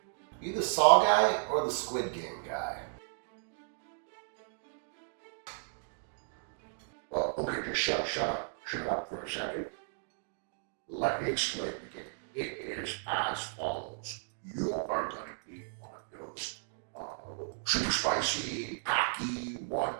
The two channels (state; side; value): silent; left; digital silence